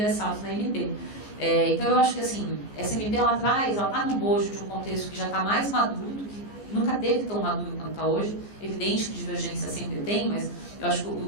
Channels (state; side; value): late; right; 14 ms